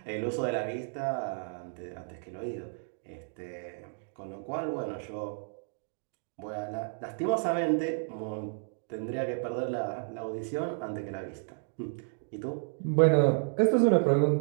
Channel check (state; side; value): silent; left; digital silence